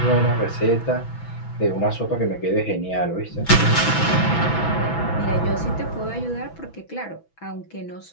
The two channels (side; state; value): right; late; 6.1 ms